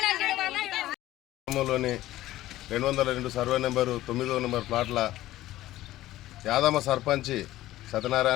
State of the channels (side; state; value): right; quieter; 15.3 dB